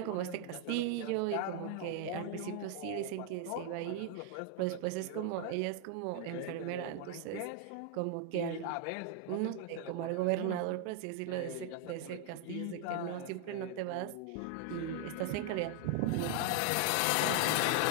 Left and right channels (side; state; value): both; different; correlation 0.00